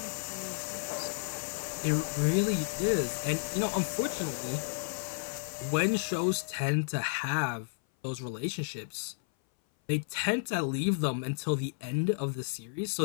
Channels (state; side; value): silent; right; 56 dB below the other